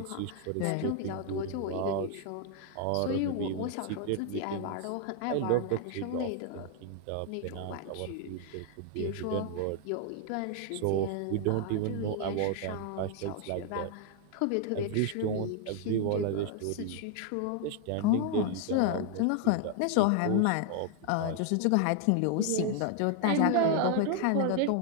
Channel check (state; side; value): different; both; correlation 0.00